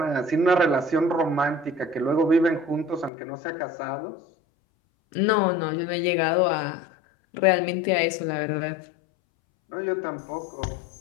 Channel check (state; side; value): drops out; right; at 3.1 s